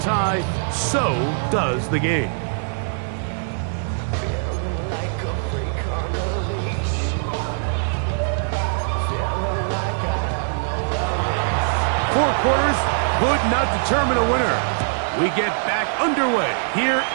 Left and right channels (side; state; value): left; silent; 64 dB below the other